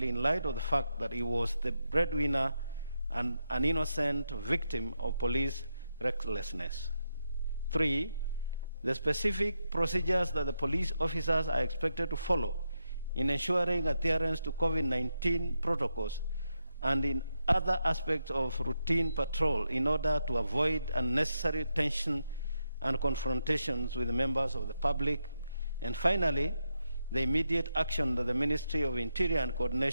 in light of the fact that he was the breadwinner and an innocent victim of police recklessness. Three, the specific procedures that the police officers are expected to follow in ensuring adherence to COVID-19 protocols and in other aspects of routine patrol in order to avoid unnecessary tension and confrontations with the members of the public. And finally, the immediate action that the Ministry of Interior and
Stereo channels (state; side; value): inverted; both; correlation -0.84